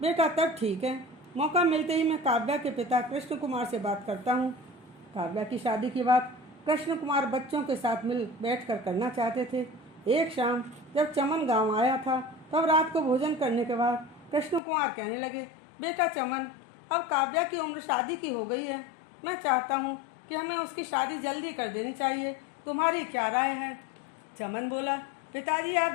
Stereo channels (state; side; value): drops out; right; at 14.6 s